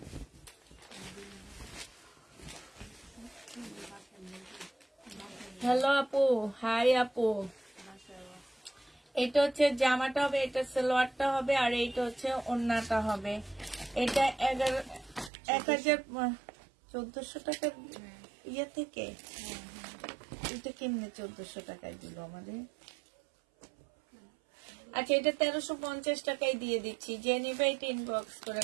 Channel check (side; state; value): left; drops out; at 15.3 s